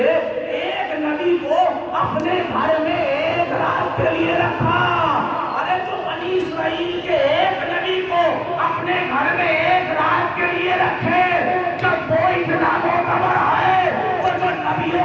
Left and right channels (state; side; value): identical; both; correlation 1.00